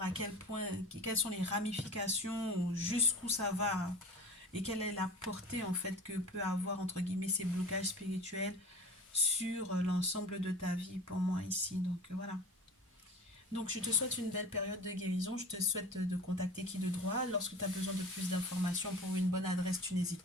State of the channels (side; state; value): both; normal; correlation 0.38